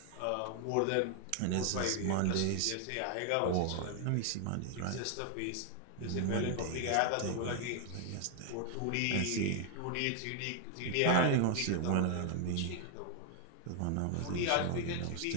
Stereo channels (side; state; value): both; different; correlation 0.00